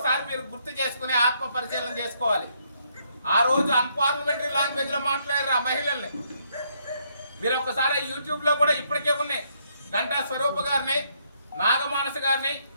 మీరు గుర్తు చేసుకుని ఆత్మ పరిశీలన చేసుకోవాలి. ఆ రోజు అన్పార్లమెంటరీ లాంగ్వేజ్ లో మాట్లాడారు ఆ మహిళల్ని. మీరు ఒక్కసారి యూట్యూబ్ లో కూడా ఇప్పటికే ఉన్నాయి. గంటా స్వరూప గారిని, నాగమానస గారిని,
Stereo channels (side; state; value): both; inverted; correlation -0.72